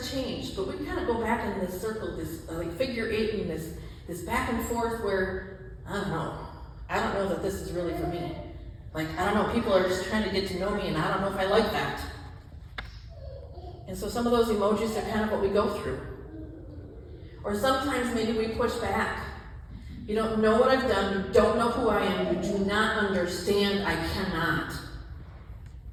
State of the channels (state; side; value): identical; both; correlation 1.00